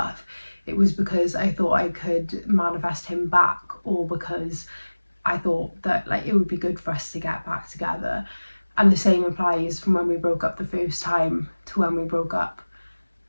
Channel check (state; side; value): inverted; both; correlation -1.00